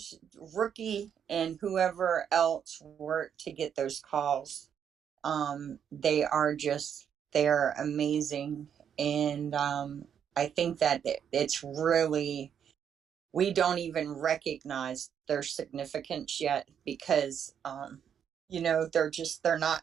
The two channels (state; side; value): quieter; left; 8.3 dB